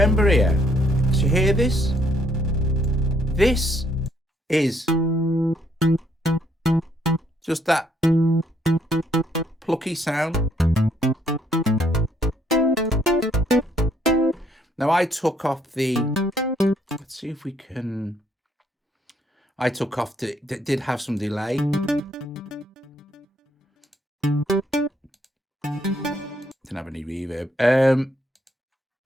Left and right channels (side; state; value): both; normal; correlation 0.69